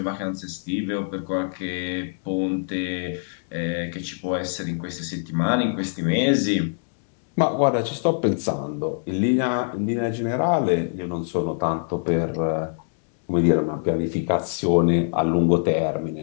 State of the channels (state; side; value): silent; right; digital silence